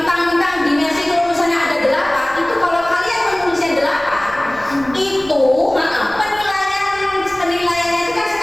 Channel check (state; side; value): noise; right; rumble, 21 dB below the sound